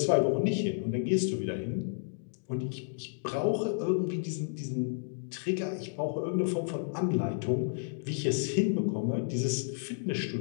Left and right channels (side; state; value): right; silent; digital silence